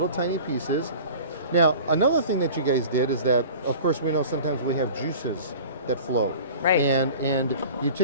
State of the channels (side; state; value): both; inverted; correlation -0.40